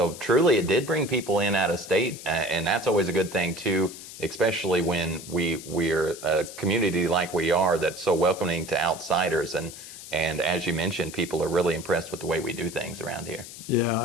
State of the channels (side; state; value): left; noise; hiss, 14 dB below the sound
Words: truly, it did bring people in out of state, and that's always a good thing too, especially when we're a community like we are that's so welcoming to outsiders. And as you mentioned, people are really impressed with the way we do things around here. Yeah,